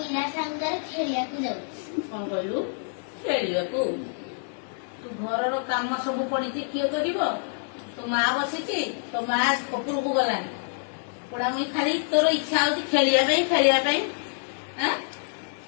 ସାଙ୍ଗରେ ଖେଳିବାକୁ ଯାଉଛି। କଣ କହିଲୁ? ଖେଳିବାକୁ? ତୁ ଘରର କାମ ସବୁ ପଡିଛି, କିଏ କରିବ? ତୋ ମା ବସିଛି, ତୋ ମା ଉପରକୁ ଗଲାଣି। ପୋଡାମୁଇ ଖାଲି ତୋର ଇଚ୍ଛା ହଉଛି ଖେଳିବା ପାଇଁ।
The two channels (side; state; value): right; silent; 60 dB below the other